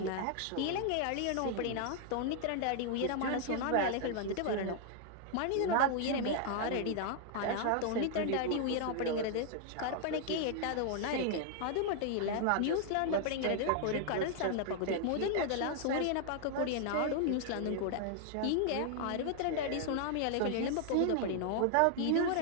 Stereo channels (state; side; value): different; both; correlation 0.00